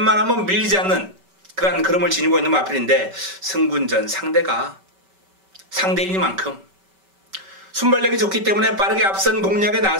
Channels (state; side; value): late; left; 5.2 ms